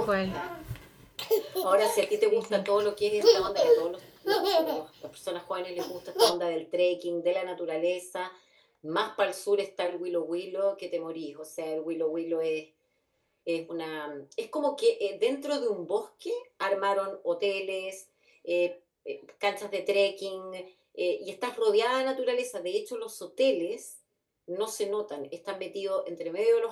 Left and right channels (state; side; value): identical; both; correlation 1.00